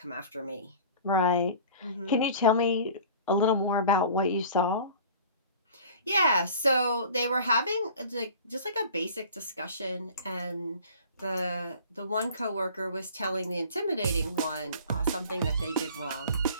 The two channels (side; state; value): both; inverted; correlation -0.44